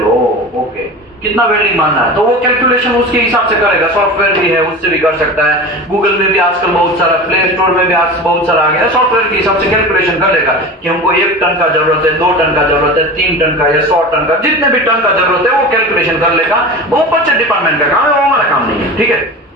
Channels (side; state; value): both; normal; correlation 0.31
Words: ओके कितना वेल्डिंग मारना है, तो वो कैलकुलेशन उसके हिसाब से करेगा। सॉफ्टवेयर भी है, उससे भी कर सकता है। गूगल में भी आजकल बहुत सारा, प्ले स्टोर में भी आज बहुत सारा आ गया, सॉफ्टवेयर के हिसाब से कैलकुलेशन कर लेगा कि हमको 1 टन का जरूरत है, 2 टन का जरूरत है, 3 टन का या 100 टन का, जितने भी टन का जरूरत है वो कैलकुलेशन कर लेगा। वो परचेज डिपार्टमेंट का काम है, वो हमारा काम नहीं है, ठीक है।